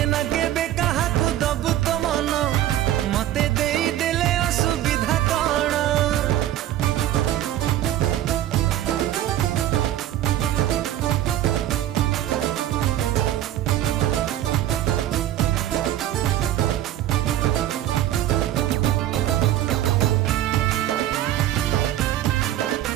ना केबे कहा को दबु तो मन मते देई देले असुविधा कण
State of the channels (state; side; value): quieter; left; 12.8 dB